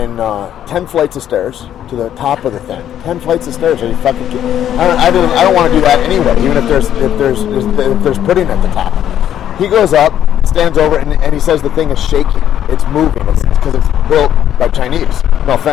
10 flights of stairs to the top of the thing. 10 flights of stairs. And he fucking I don't want to do that anyway, even if there's pudding at the top. He goes up, stands over, and he says the thing is shaking. It's moving. It's because it's built by Chinese. No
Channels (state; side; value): quieter; right; 10.6 dB